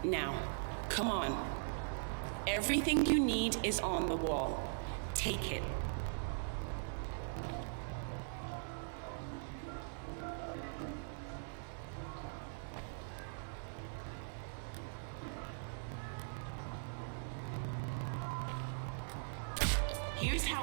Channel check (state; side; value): silent; left; digital silence